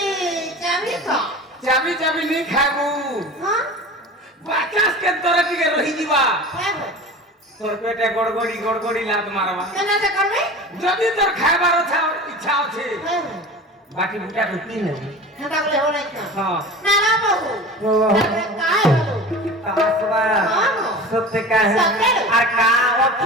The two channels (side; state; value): both; normal; correlation 0.35